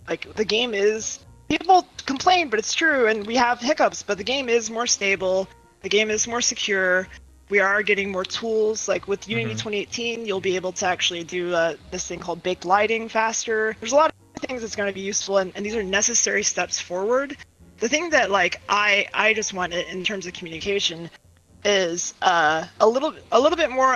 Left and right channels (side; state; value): both; identical; correlation 1.00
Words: Like the game is, people complain, but it's true, and we have hiccups, but the game is more stable, the game is more secure. We are getting more tools. Like with Unity Hmm. 2018, you'll be able to actually do this thing called baked lighting faster. There's a lot things that's going to be useful, and these are necessary steps forward. The thing that like I just want in terms of communication is a little bit